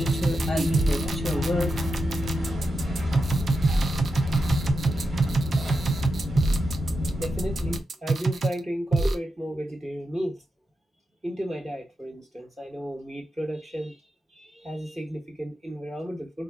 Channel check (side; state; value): both; normal; correlation 0.88